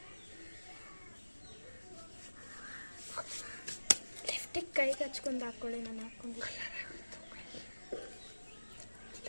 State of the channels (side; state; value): both; inverted; correlation -1.00